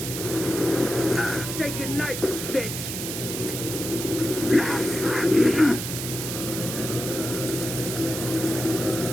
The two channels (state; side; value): noise; right; hiss, 5 dB below the sound